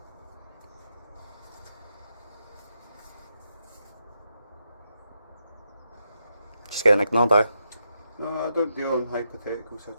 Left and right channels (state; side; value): inverted; both; correlation -0.84